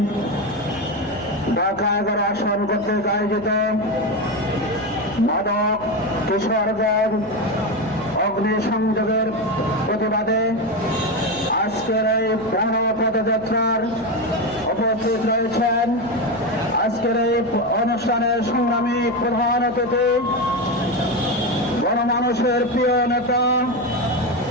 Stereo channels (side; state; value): left; noise; hum, 21 dB below the sound